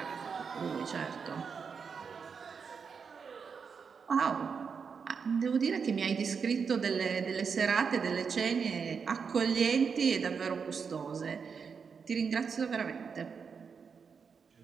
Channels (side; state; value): left; quieter; 6.0 dB